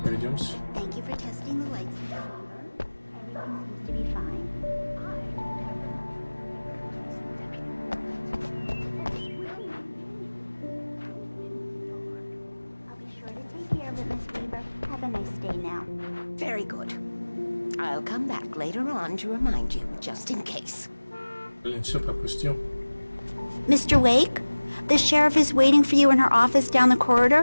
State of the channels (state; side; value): inverted; both; correlation -1.00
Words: пройдемся. To remind you, just in case. Блин, все пропустил. Mr. Wake, the sheriff is waiting for you in her office down the